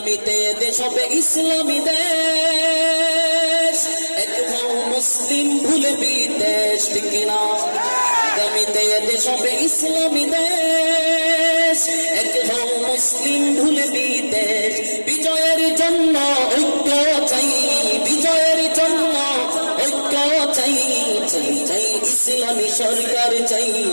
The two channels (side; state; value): both; inverted; correlation -1.00